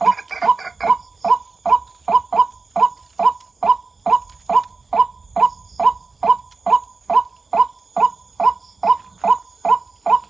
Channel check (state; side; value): quieter; left; 3.9 dB